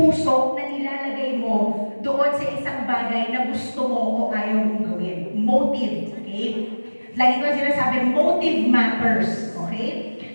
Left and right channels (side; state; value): both; inverted; correlation -1.00